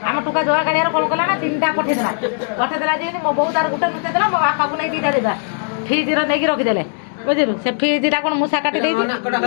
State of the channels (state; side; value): silent; right; 62 dB below the other